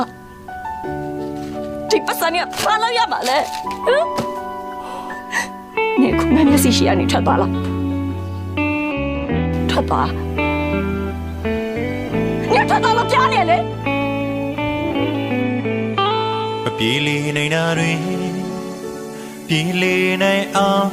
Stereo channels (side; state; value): both; identical; correlation 1.00